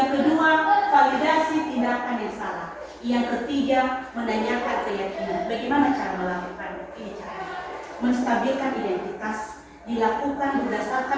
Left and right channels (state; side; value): identical; both; correlation 1.00